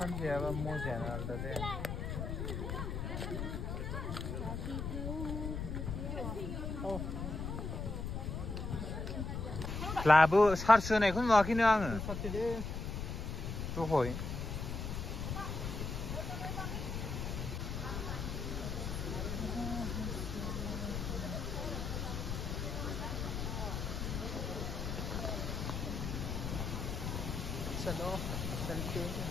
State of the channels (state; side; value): noise; left; rumble, 3 dB below the sound